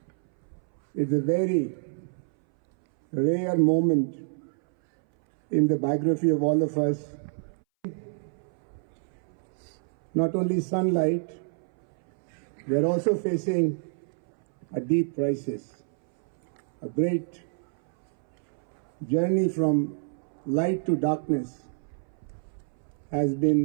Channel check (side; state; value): left; silent; 60 dB below the other